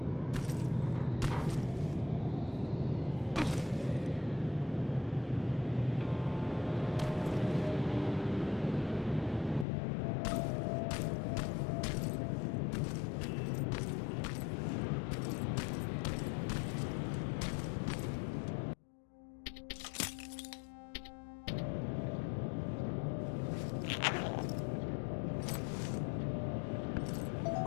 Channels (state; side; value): drops out; right; at 9.7 s